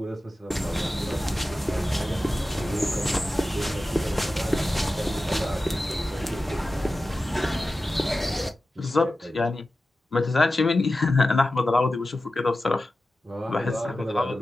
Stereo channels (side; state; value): both; normal; correlation 0.94